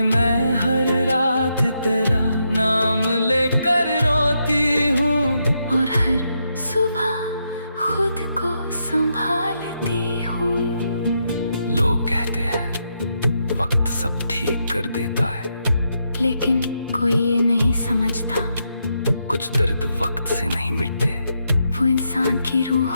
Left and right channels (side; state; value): both; inverted; correlation -0.81